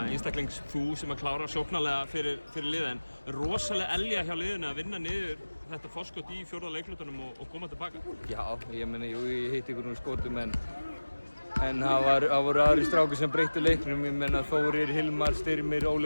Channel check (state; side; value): inverted; both; correlation -1.00